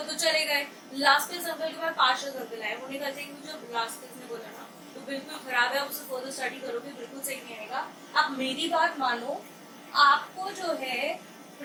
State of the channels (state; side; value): identical; both; correlation 1.00